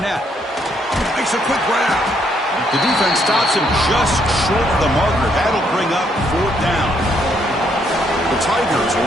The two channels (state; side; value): normal; both; correlation 0.72